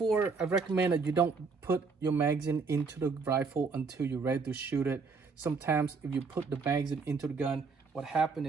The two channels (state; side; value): quieter; left; 4.7 dB